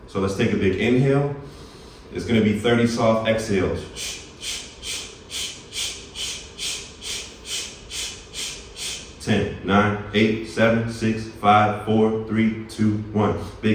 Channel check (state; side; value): identical; both; correlation 1.00